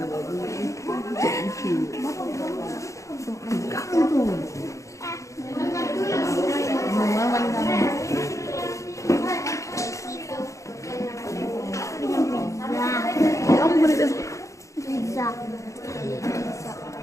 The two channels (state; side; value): late; right; 0.15 ms